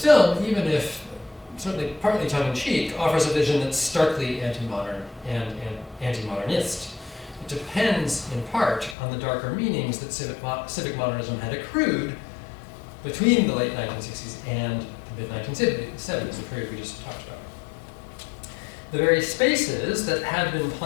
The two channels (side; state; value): right; drops out; at 9.0 s